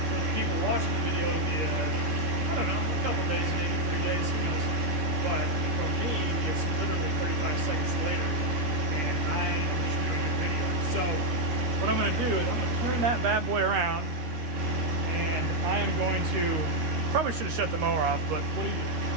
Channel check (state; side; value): late; left; 13 ms